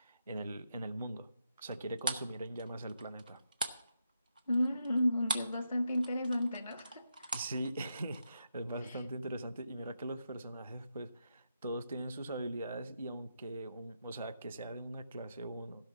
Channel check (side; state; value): both; inverted; correlation -0.84